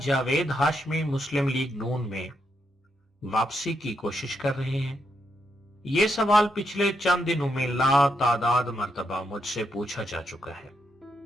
جاوید ہاشمی مسلم لیگ نون میں واپسی کی کوشش کر رہے ہیں؟ یہ سوال پچھلے چند دنوں میں لا تعداد مرتبہ مجھ سے پوچھا جا چکا ہے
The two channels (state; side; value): normal; both; correlation 0.80